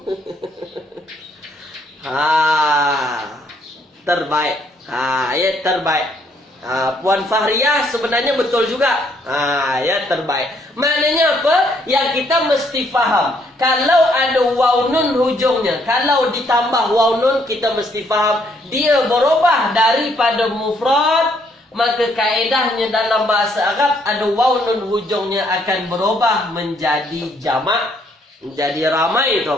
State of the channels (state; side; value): normal; both; correlation 0.69